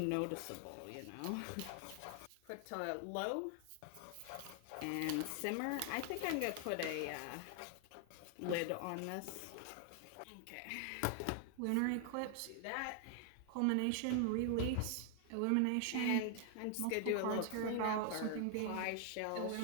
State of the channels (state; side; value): different; both; correlation 0.00